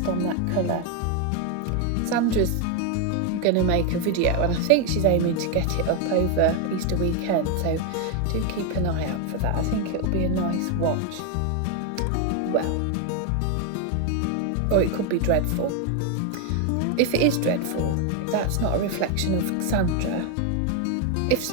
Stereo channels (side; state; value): both; different; correlation 0.01